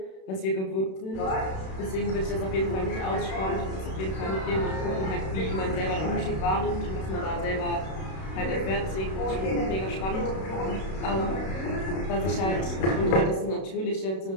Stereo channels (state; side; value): late; right; 32 ms